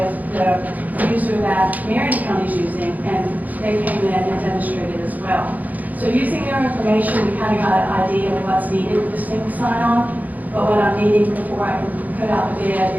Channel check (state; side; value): late; left; 0.080 ms